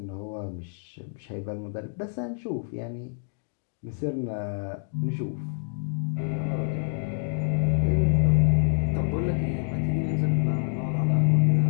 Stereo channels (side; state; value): right; silent; 60 dB below the other